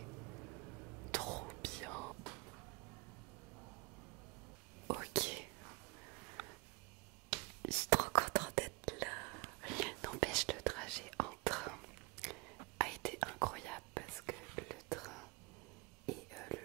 Trop bien. Ok. Je suis trop contente d'être là. N'empêche, le trajet en train a été incroyable parce que le train est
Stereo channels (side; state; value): left; quieter; 28.4 dB